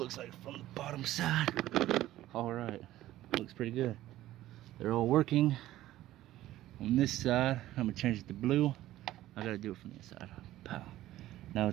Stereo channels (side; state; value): left; quieter; 14.7 dB